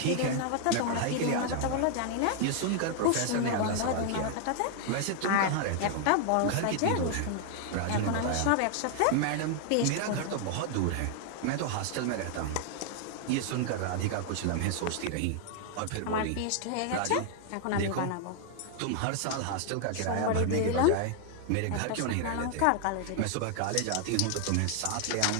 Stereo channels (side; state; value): both; different; correlation 0.00